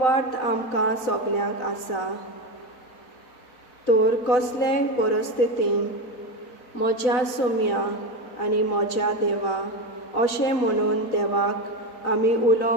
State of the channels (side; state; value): right; late; 4.0 ms